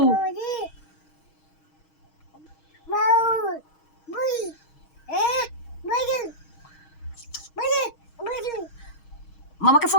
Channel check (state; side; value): late; right; 6.4 ms